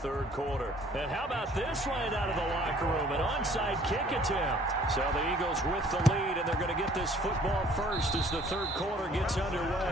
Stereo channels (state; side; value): normal; both; correlation 0.56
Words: quarter. And how about this line out of the locker room? An onside kick attempt. So the Eagles with the lead, and they're going to get this football first as the third quarter gets